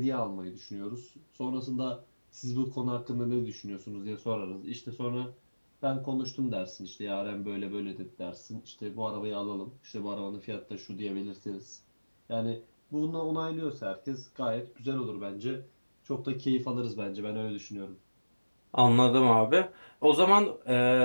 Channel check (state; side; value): inverted; both; correlation -1.00